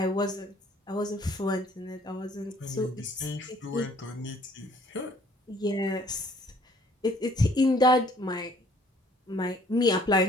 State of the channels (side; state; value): both; normal; correlation 0.59